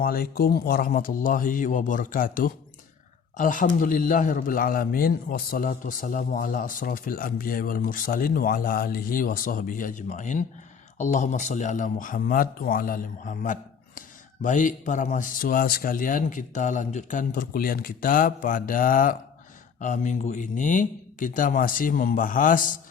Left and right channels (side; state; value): right; quieter; 6.6 dB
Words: warahmatullahi wabarakatuh. Alhamdulillahirabbil alamin wassalatu wassalamu ala asrafil anbiya'i wal mursalin wa ala alihi wa sahbihi ajmain. Allahumma shalli ala Muhammad wa ala ali Muhammad. Baik para mahasiswa sekalian, kita lanjutkan perkuliahan kita pada minggu ini. Kita masih membahas